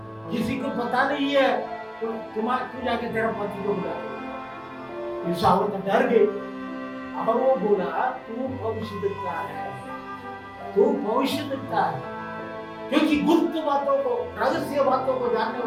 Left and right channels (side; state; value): both; identical; correlation 1.00